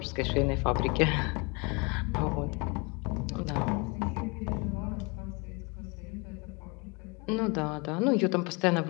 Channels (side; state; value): right; quieter; 29.3 dB